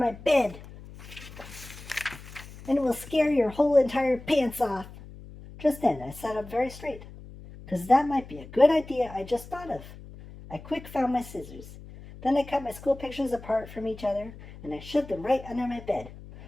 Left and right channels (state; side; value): noise; left; hum, 16 dB below the sound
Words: bed. And it will scare your whole entire pants off. Just then, I sat up very straight, 'cause that might be a good idea I just thought of. I quick found my scissors. Then I cut my school pictures apart from each other, and I shoved them right under my bed.